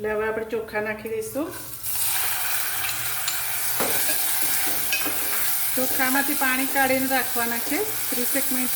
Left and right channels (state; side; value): identical; both; correlation 1.00